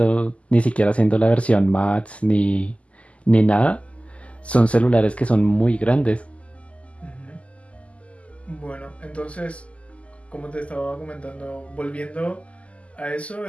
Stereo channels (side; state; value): right; late; 0.062 ms